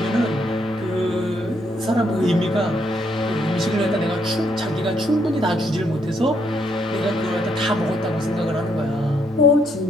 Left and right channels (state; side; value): normal; both; correlation 0.73